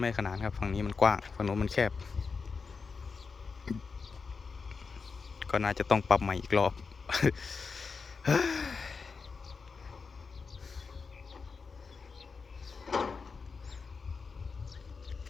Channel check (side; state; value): right; quieter; 4.9 dB